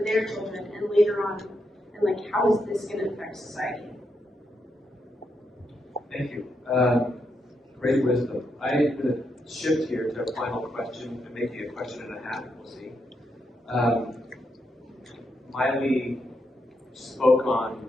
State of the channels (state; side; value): normal; both; correlation 0.82